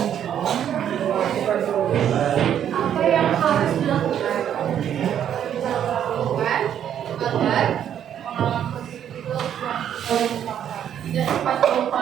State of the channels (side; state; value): left; quieter; 9.7 dB